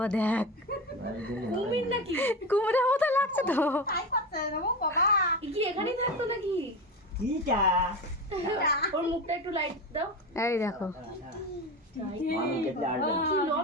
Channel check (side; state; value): both; normal; correlation 0.23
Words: দেখ কুমির নাকি? কুমিরের মতো লাগছে তো। কি এখানেই থাকতো নাকি? কিটা ওর মুখটা একটু লাইট দাও। এই দেখো, মানুষ দেখলে আসবে না। কি